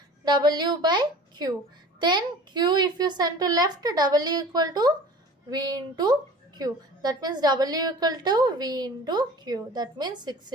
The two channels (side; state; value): both; normal; correlation 0.42